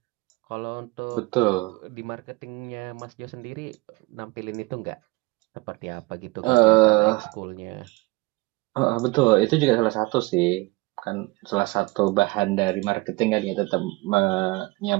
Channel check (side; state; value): left; quieter; 23.7 dB